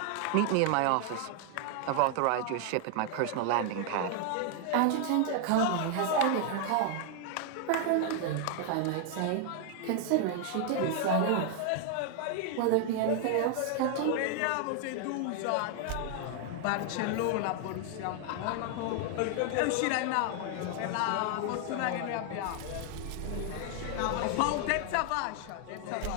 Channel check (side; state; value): both; different; correlation 0.00